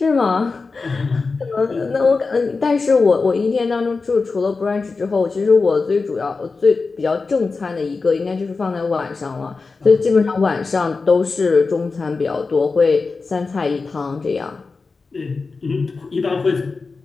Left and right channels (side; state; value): right; quieter; 4.2 dB